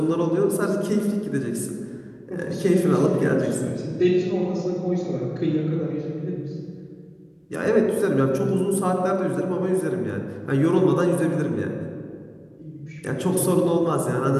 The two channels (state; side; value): identical; both; correlation 1.00